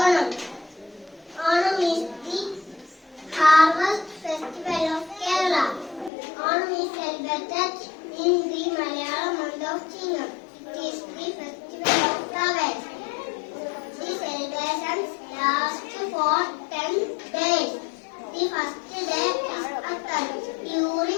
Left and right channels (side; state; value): right; drops out; at 6.1 s